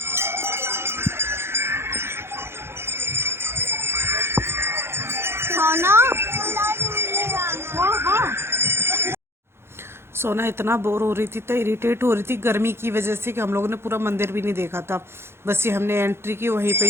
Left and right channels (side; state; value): left; late; 0.12 ms